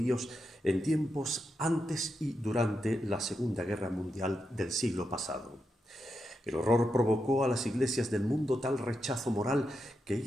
en tiempos antes y durante la Segunda Guerra Mundial del siglo pasado. El horror provocó a las iglesias del mundo tal rechazo moral que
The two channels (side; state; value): both; normal; correlation 0.86